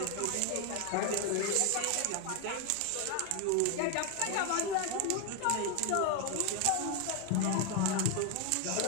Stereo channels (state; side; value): different; both; correlation 0.01